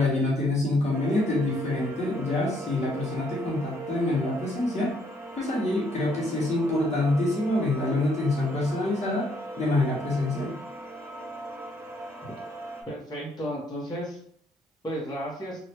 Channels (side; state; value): both; normal; correlation 0.69